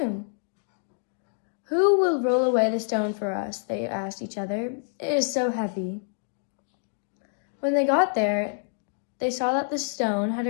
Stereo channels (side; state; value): right; silent; digital silence